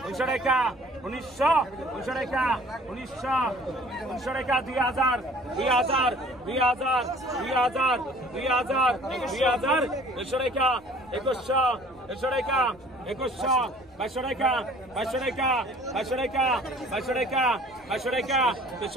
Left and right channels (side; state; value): left; noise; rumble, 29 dB below the sound